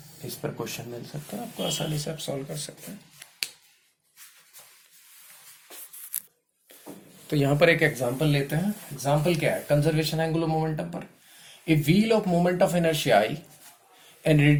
इस पर question मिल सकता है आपको, आसानी से आप सॉल्व कर सकते हैं. तो यहां पर एक एग्जांपल लेते हैं. एग्जांपल क्या है? कंजर्वेशन एंगुलर मोमेंटम पर. A wheel of moment of inertia I and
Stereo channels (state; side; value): identical; both; correlation 1.00